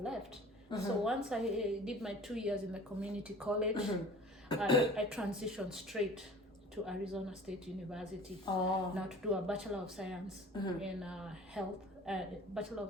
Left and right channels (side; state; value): both; normal; correlation 0.44